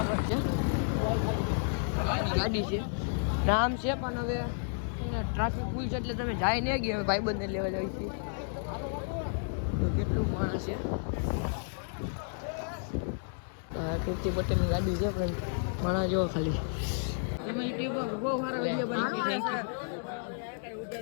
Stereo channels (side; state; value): right; silent; digital silence